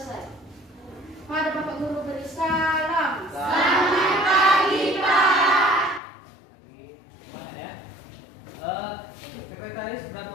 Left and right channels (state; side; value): drops out; right; at 6.0 s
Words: Pada Bapak Guru beri salam. Selamat pagi, Pak. Semangat ya. Sekretaris berapa